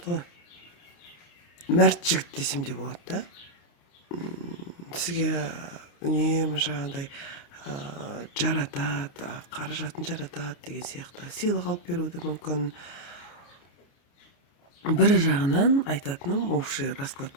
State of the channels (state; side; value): late; right; 29 ms